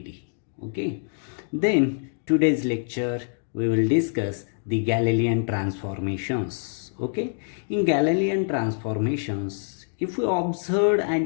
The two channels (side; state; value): right; silent; digital silence